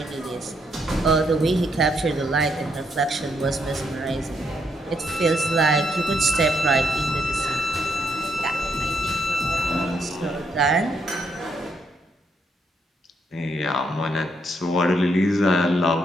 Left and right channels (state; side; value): normal; both; correlation 0.76